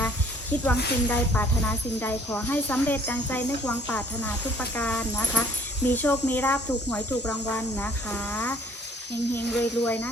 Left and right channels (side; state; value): both; normal; correlation 0.58